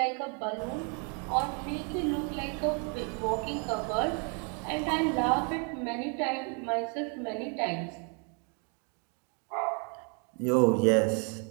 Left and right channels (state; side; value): quieter; left; 37.7 dB